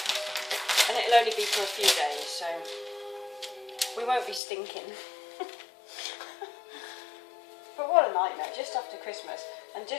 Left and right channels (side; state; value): right; drops out; at 4.4 s